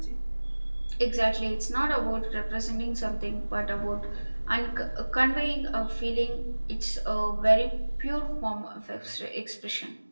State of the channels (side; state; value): both; inverted; correlation -1.00